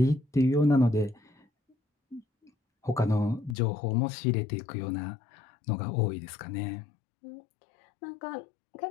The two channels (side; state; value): right; drops out; at 3.6 s